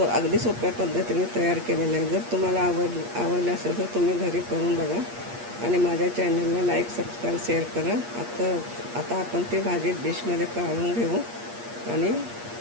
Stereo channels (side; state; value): left; late; 8.5 ms